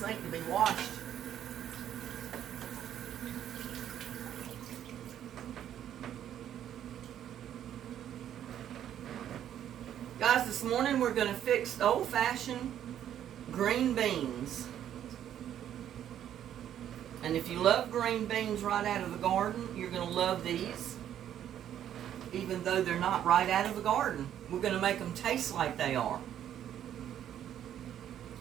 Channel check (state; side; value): quieter; left; 10.5 dB